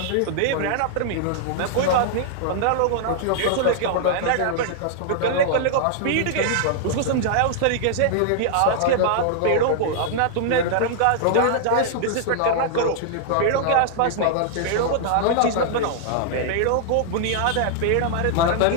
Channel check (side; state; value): both; different; correlation -0.01